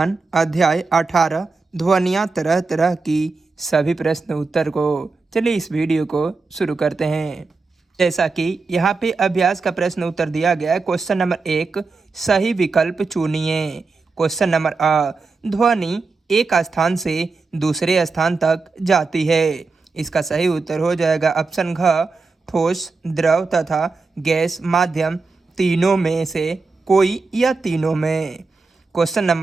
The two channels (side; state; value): left; quieter; 4.1 dB